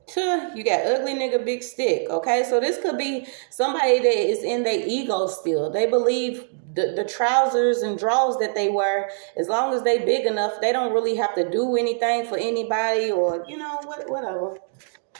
You got ugly nigga, big stick. Okay, so this could be somebody that is in their ego still. They believe the trousers and drawers that they wear, as long as they big enough, they don't really have to do anything for anybody, or, whatever.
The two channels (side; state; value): left; silent; digital silence